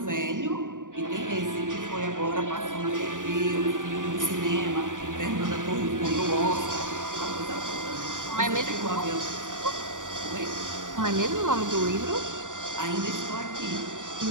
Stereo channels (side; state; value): left; late; 0.87 ms